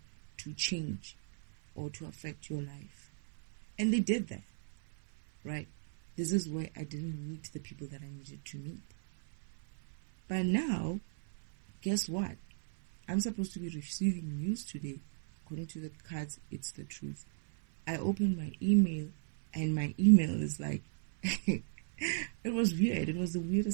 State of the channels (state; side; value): silent; left; 54 dB below the other